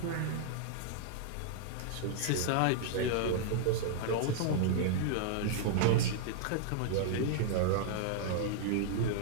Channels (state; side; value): different; both; correlation -0.01